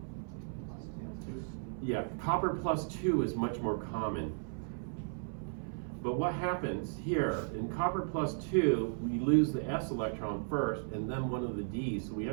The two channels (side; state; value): left; silent; 54 dB below the other